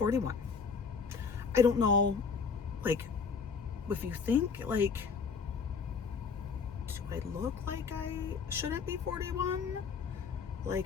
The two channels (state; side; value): quieter; right; 5.6 dB